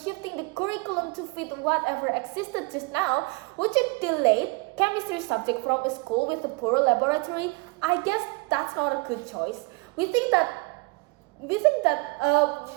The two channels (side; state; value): left; quieter; 28.3 dB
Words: the curriculum to fit whatever existed just now, would you delete chemistry subject from a school with a poor laboratory? I guess that's not a good choice. We think that